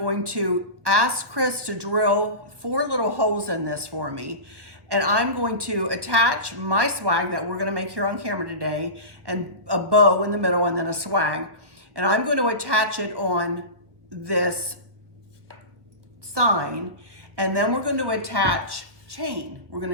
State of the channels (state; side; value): late; left; 1.3 ms